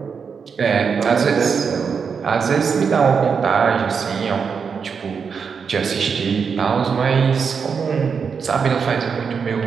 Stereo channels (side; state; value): left; quieter; 6.1 dB